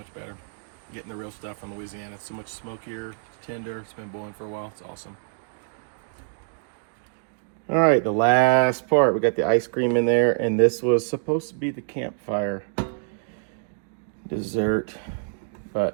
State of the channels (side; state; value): left; silent; digital silence